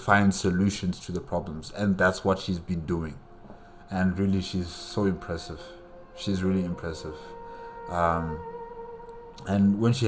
solutions to the problems. And that's what she's been doing. And really, she's so impressive. She's really impressive. And when she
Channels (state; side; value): identical; both; correlation 1.00